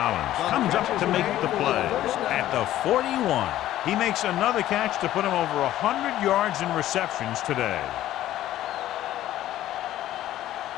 comes up to make the play at the 41. He makes another catch to put him over 100 yards in receptions today.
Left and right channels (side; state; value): right; quieter; 13.5 dB